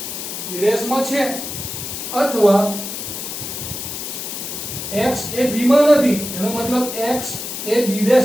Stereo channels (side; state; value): left; noise; hiss, 6 dB below the sound